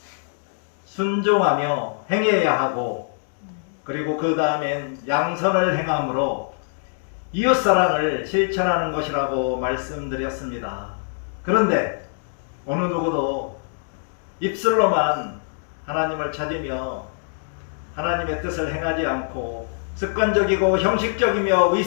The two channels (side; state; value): right; silent; digital silence